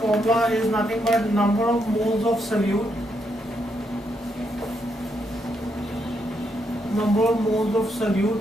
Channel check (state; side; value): normal; both; correlation 0.79